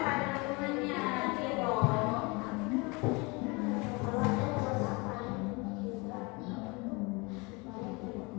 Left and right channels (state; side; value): quieter; right; 27.5 dB